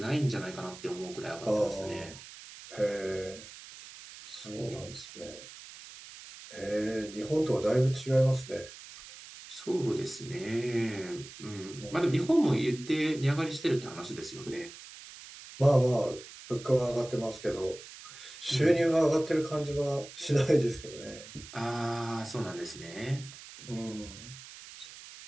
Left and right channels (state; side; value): noise; right; hiss, 16 dB below the sound